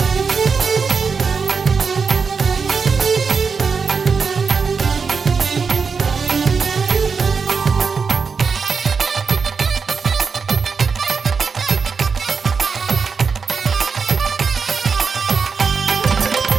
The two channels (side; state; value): left; quieter; 5.3 dB